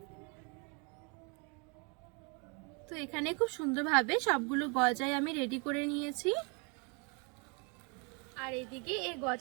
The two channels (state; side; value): quieter; left; 33.8 dB